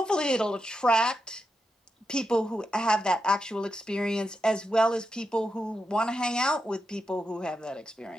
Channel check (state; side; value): normal; both; correlation 0.87